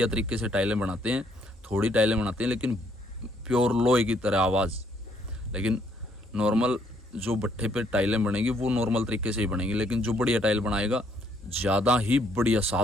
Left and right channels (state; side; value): normal; both; correlation 0.69